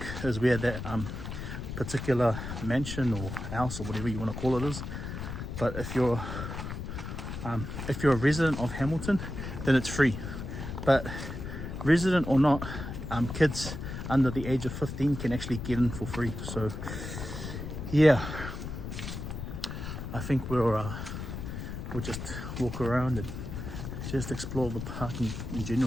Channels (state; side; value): noise; left; rumble, 7 dB below the sound